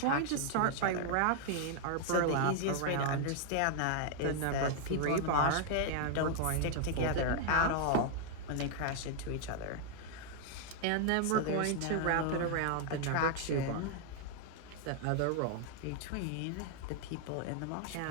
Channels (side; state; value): both; different; correlation 0.00